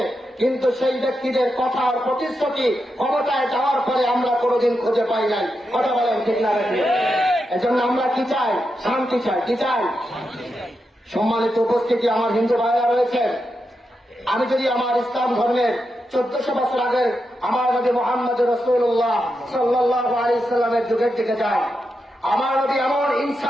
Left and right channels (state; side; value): normal; both; correlation 0.87